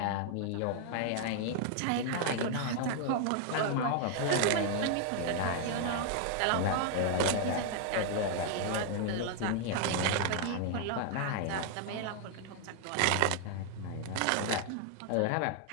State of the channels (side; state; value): both; different; correlation 0.00